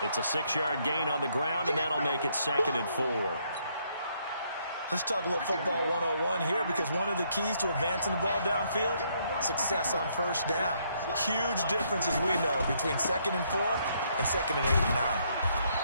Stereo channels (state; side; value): inverted; both; correlation -0.71